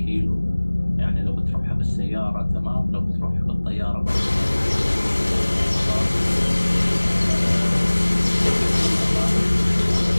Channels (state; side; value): inverted; both; correlation -1.00